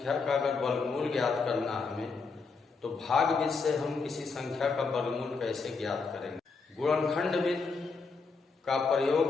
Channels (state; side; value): quieter; right; 4.6 dB